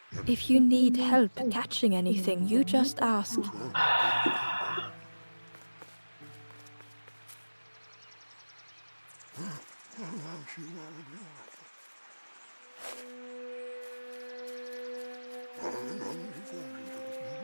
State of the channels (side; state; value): both; inverted; correlation -1.00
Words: If you need help catching anything, you just ask.